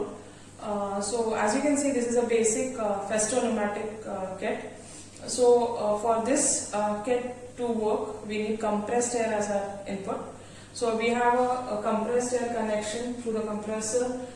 So as you can see, this is a basic Festo pneumatic kit. So for this kit to work, we need compressed air as our input. So we have a compressed air connection through the compressor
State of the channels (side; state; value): both; identical; correlation 1.00